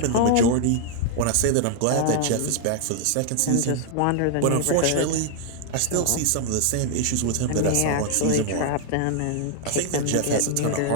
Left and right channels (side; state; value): both; different; correlation 0.00